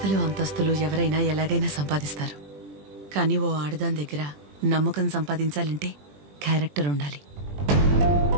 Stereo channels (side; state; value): left; late; 20 ms